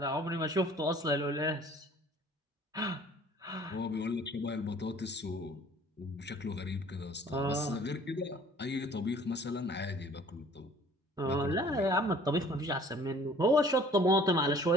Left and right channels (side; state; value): both; normal; correlation 0.52